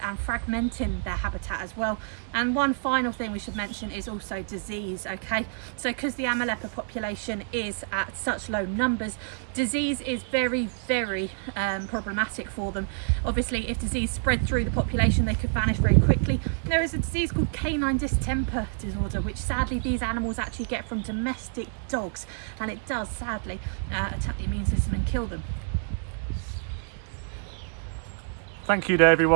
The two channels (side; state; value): left; silent; digital silence